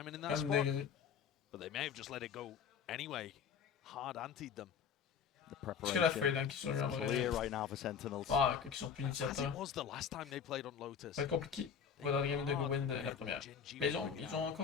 in that Comme spot, des... but they may have just let it go anyway. Hard antied them. The Parce que la preparation fade hein, qui sont eu en vrai. clear right now for Sentinels. Ah, qui sont plus As initiateurs. it was the last time they played on Lotus. Ça va être compliqué. Pour dans le game de Gowen de la première. Mais ils ont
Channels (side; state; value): right; quieter; 7.1 dB